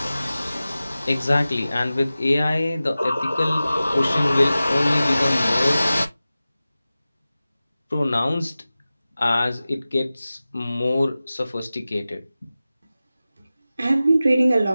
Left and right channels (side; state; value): both; inverted; correlation -0.96